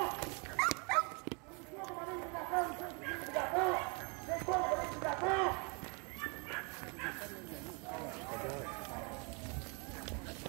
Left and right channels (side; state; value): left; quieter; 33.8 dB